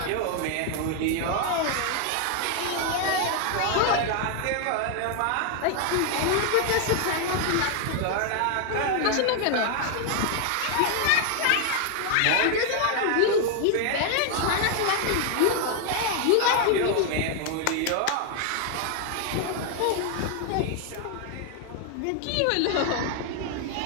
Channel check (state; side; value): different; both; correlation 0.00